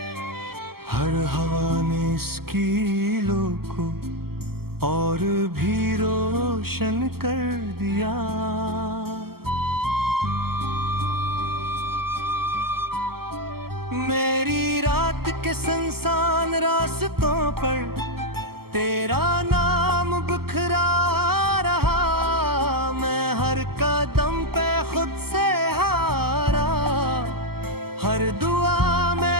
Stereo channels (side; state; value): left; late; 0.95 ms